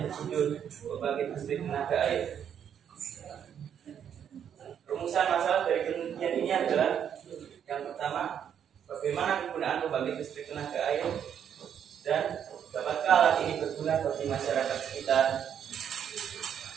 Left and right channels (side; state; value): left; quieter; 8.7 dB